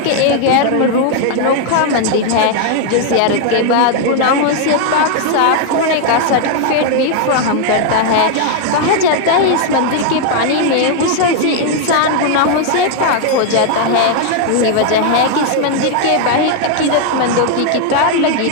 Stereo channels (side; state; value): both; different; correlation 0.00